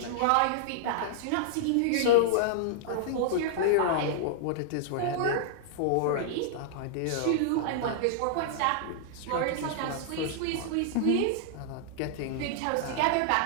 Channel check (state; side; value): different; both; correlation -0.01